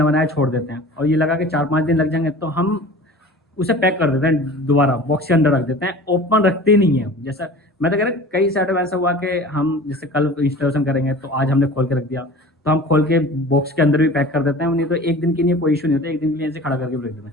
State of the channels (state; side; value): normal; both; correlation 0.40